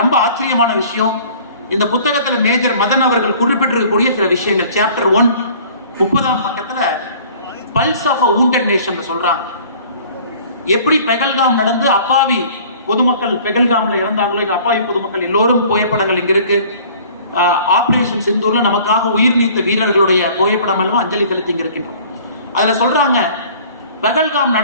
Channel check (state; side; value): inverted; both; correlation -0.50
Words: ரொம்ப ஆச்சரியமான விஷயம், இந்த புத்தகத்துல மேஜர் மதன் அவர்கள் குறிப்பிட்டிருக்கக்கூடிய சில விஷயங்கள். சாப்டர் 1 30ஆம் பக்கத்துல pulse of a wounded nation சொல்றாங்க. எப்படி பெகல்காம் நடந்து அப்பாவி பொதுமக்கள் பெகல்காம்ல இறந்தாங்களோ, அப்பாவி பொதுமக்கள் எல்லோரும் புகைப்படங்கள் இங்க இருக்கு. ஆபரேஷன் சிந்தூர்ல நமக்காக உயிர் நீத்த வீரர்களுடைய புகைப்படம் எல்லாம் அஞ்சலி செலுத்தி இங்க இருக்கின்றோம். அதுல சொல்றாங்க, பெகல்காம்